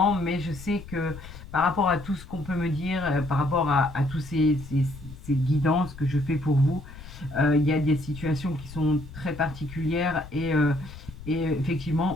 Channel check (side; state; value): left; noise; rumble, 15 dB below the sound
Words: mais je sais que par rapport à tout ce qu'on peut me dire, par rapport à tous ces guidances que je fais pour vous, il y a des situations qui sont très particulières et